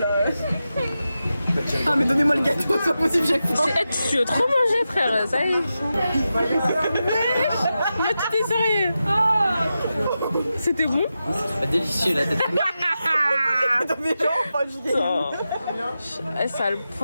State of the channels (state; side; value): inverted; both; correlation -0.91